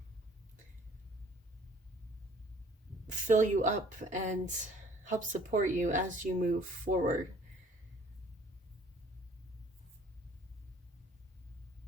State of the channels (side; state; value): both; normal; correlation 0.56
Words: fill you up and help support you as you move forward.